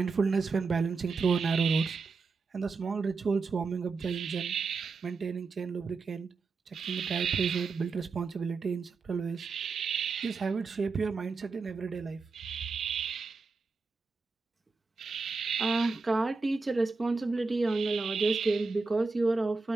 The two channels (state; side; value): quieter; left; 4.3 dB